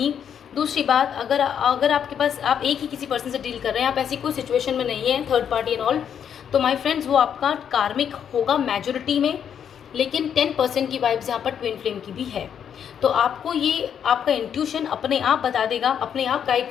दूसरी बात, अगर आपके पास आप एक ही किसी पर्सन से डील कर रहे हैं, आप ऐसी कोई सिचुएशन में नहीं है, थर्ड पार्टी एंड ऑल, तो माय फ्रेंड्स वो आपका कार्मिक होगा मेजॉरिटी में, लेकिन 10% की वाइब्स यहाँ पर ट्विन फ्लेम की भी है। तो आपको ये आपका इंट्यूशन अपने आप बता देगा, अपने आप गाइड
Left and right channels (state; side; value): quieter; right; 8.4 dB